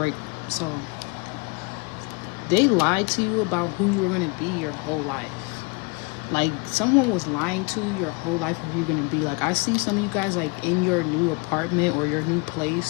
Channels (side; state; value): right; quieter; 29.3 dB